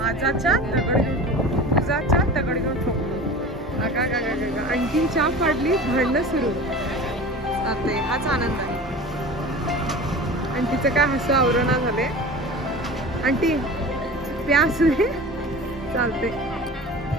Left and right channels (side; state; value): both; normal; correlation 0.36